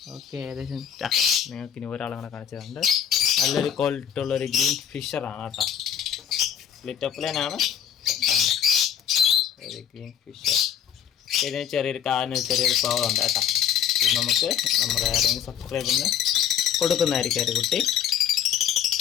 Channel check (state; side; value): quieter; right; 9.1 dB